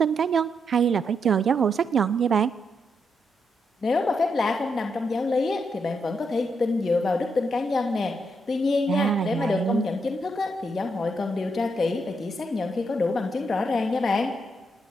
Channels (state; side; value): normal; both; correlation 0.80